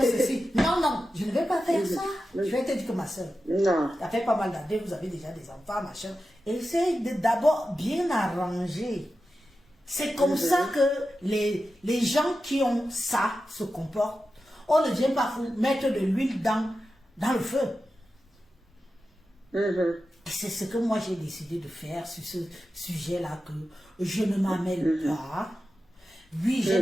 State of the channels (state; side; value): normal; both; correlation 0.92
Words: ceci. Non, je ne vais pas faire ça. Je vais te dire que ma soeur, ça fait pas mal d'années, vous avez déjà des enfants, machin. Essaye d'abord bien arranger. C'est comme ça que les gens qui ont ça se comportent. On ne vient pas mettre de l'huile dans le feu. C'est ce que moi j'ai décidé de faire sur ce sujet-là, que je ne m'amène pas. Oui, j'ai